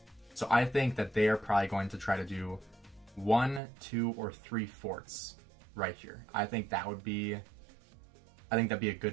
So I think that they are probably going to try to do 1, 2, or 3 forts right here. I think that'd be a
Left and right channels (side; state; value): left; drops out; at 3.6 s